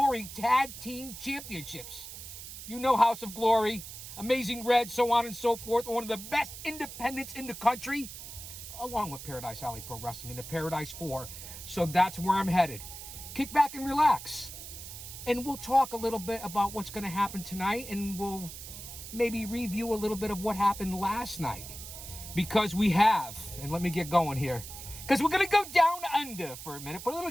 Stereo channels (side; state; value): right; noise; hiss, 11 dB below the sound